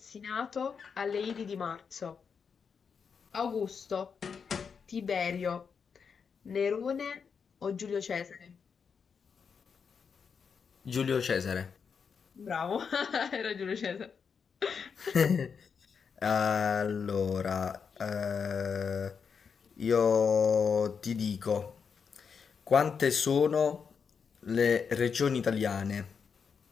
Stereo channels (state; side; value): quieter; right; 6.2 dB